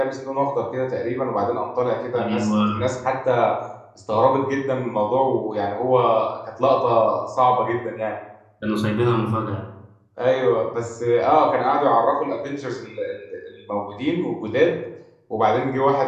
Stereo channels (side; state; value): both; identical; correlation 1.00